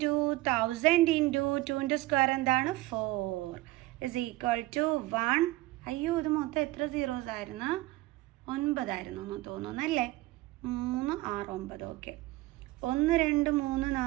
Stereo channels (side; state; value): left; quieter; 18.7 dB